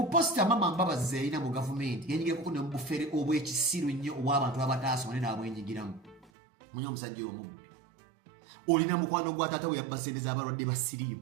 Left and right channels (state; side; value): drops out; left; at 6.3 s